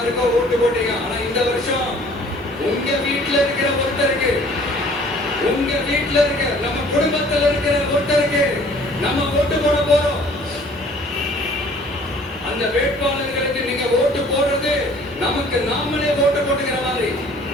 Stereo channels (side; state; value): both; normal; correlation 0.53